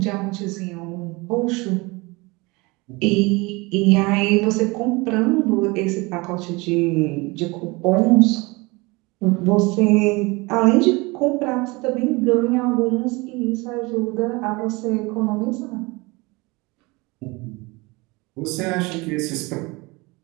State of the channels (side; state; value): left; quieter; 24.9 dB